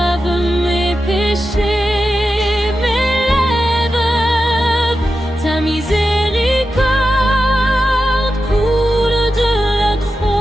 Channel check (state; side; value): normal; both; correlation 0.91